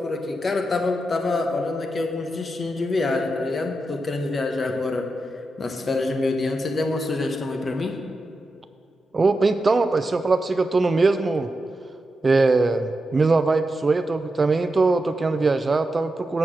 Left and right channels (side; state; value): both; normal; correlation 0.88